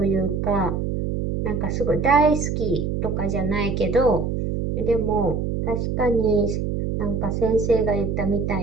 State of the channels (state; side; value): noise; right; hum, 1 dB below the sound